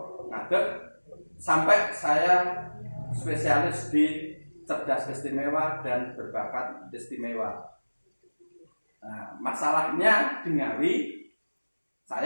ngadeg, sampai saya spesialis di cerdas istimewa dan berbakat istimewa. Nah, masalahnya di Ngawi,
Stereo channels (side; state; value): both; inverted; correlation -1.00